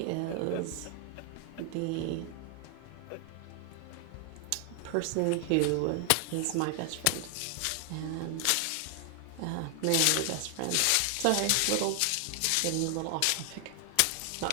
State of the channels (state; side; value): different; both; correlation 0.00